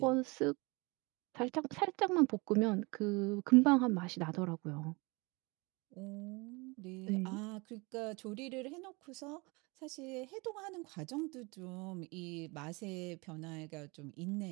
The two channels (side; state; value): left; quieter; 26.8 dB